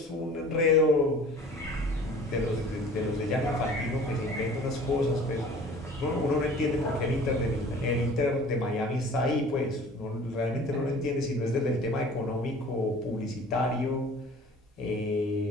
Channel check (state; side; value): normal; both; correlation 0.46